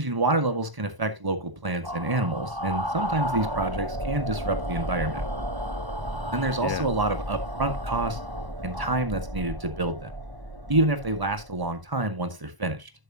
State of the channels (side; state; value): left; late; 1.0 ms